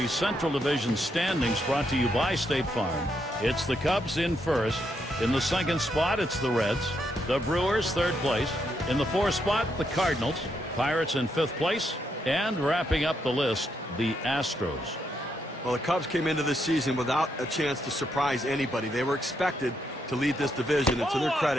Central Division standings brought to you by State Farm. It's the Cubs in first. In the second spot, it's the Reds. The Brewers, third place. In the fourth spot, the Cardinals. Pirates in fifth place. And wrapping up the list, the Astros. Well, the Cubs came into this season without a chance to surprise anybody. They were expected to lead this division, and to their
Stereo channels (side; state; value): both; normal; correlation 0.78